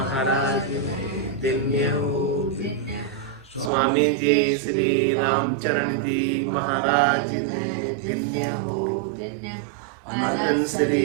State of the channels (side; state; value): left; drops out; at 3.7 s